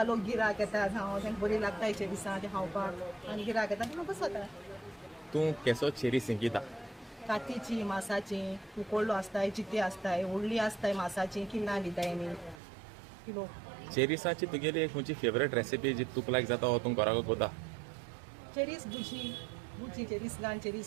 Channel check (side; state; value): left; drops out; at 12.6 s